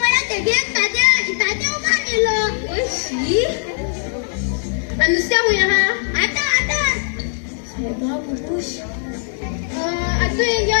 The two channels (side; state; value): right; silent; digital silence